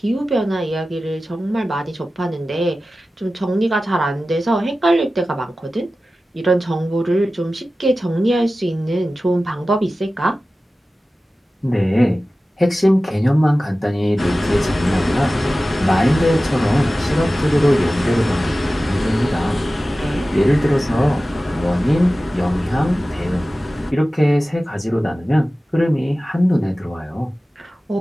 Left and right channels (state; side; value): normal; both; correlation 0.95